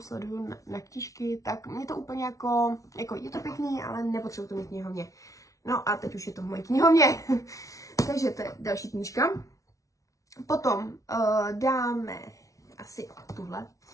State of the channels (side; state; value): right; late; 0.16 ms